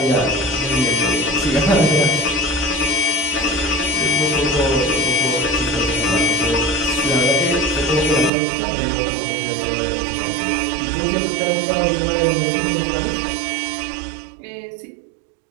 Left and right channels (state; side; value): drops out; left; at 8.3 s